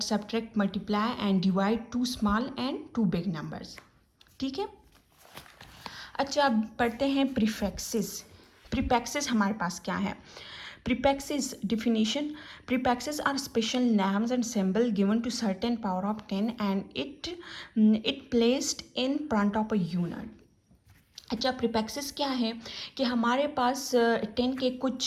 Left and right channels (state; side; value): identical; both; correlation 1.00